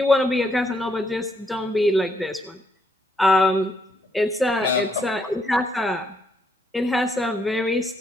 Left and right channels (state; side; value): normal; both; correlation 0.74